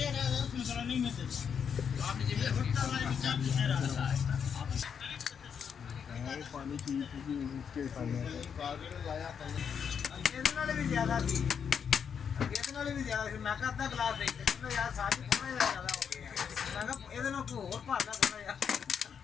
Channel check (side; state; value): right; quieter; 7.2 dB